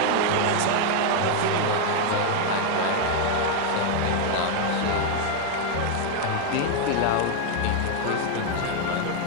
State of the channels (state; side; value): different; both; correlation 0.01